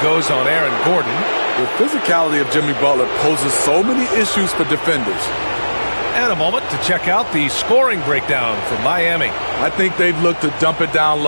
goes on Aaron Gordon. The physicality of Jimmy Butler poses so many issues for defenders. And a moment to check out the scoring breakdown from Miami. I think they've looked to dump it down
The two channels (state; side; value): inverted; both; correlation -1.00